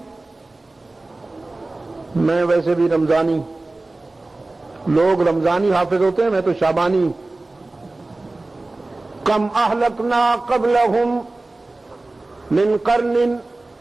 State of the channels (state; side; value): quieter; left; 3.0 dB